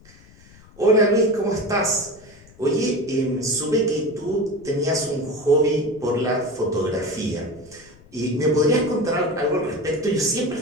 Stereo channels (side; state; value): left; noise; rumble, 25 dB below the sound